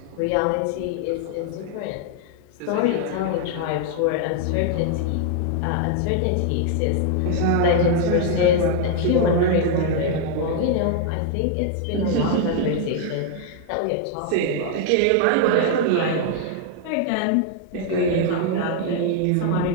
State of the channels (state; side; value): different; both; correlation 0.00